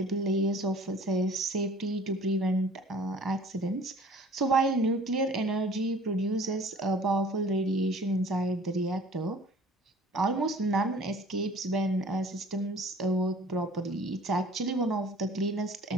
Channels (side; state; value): both; normal; correlation 0.49